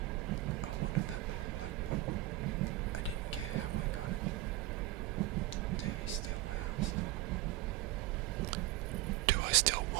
I wanted that little black book. I didn't care how I got it. Do you still? I asked. Do I still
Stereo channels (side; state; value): left; quieter; 16.2 dB